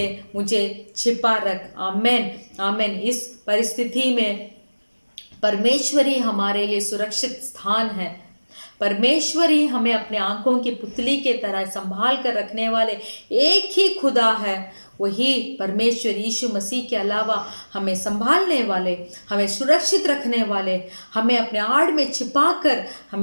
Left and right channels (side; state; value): both; inverted; correlation -1.00